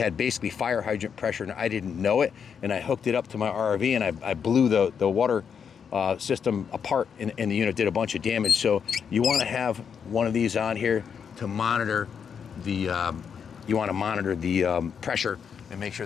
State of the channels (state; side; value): quieter; right; 7.0 dB